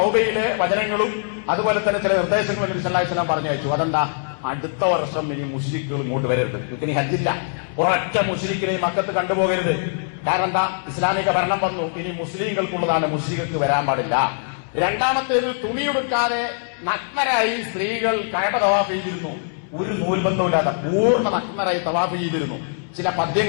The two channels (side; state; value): right; silent; 64 dB below the other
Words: വചനങ്ങളും അതുപോലെ തന്നെ ചില നിർദ്ദേശങ്ങളും നബി സല്ലല്ലാഹു അലൈഹി വസല്ലം പറഞ്ഞയച്ചു. അതെന്താ? അടുത്ത വർഷം ഇനി മുശ്രിക്കുകൾ ഇങ്ങോട്ട് വരരുത്, ഇനി ഹജ്ജില്ല, ഒരൊറ്റ മുശ്രിക്കിനെ മക്കത്ത് കണ്ടുപോകരുത്. കാരണം എന്താ? ഇസ്ലാമിക ഭരണം വന്നു, ഇനി മുസ്ലിങ്ങൾക്കുള്ളതാണ്, മുശ്രികൾക്ക് വരാൻ പാടില്ല. രണ്ടാമത്തേത്, തുണിയെടുക്കാതെ നഗ്നരായി സ്ത്രീകൾ കഅബ തവാഫ് ചെയ്തിരുന്നു. ഒരു നൂൽബന്ധമില്ലാതെ പൂർണ്ണ നഗ്നരായി തവാഫ് ചെയ്തിരുന്നു. ചില